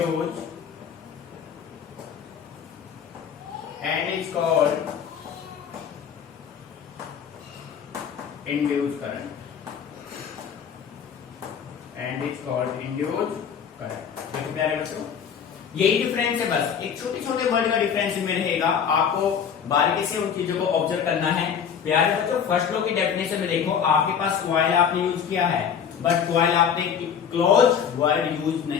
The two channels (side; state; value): right; quieter; 7.6 dB